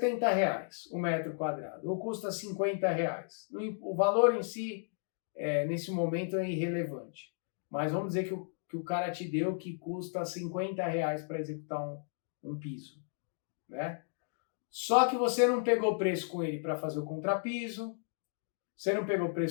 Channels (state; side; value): silent; right; digital silence